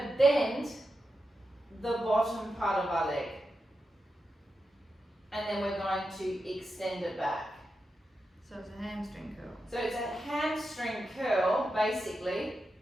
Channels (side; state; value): both; normal; correlation 0.89